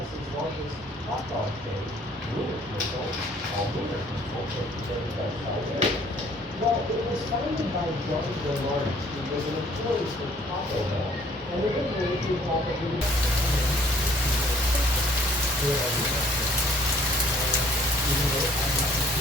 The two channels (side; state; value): both; normal; correlation 0.58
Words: largest hot dog chain, Wiener called Wiener well, it was founded by John Bernard, who was an employee for Taco Bell, and originally he thought that he would. Even though it had nothing to